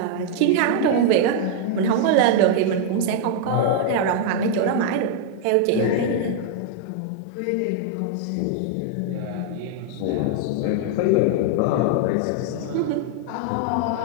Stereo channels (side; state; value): both; different; correlation 0.00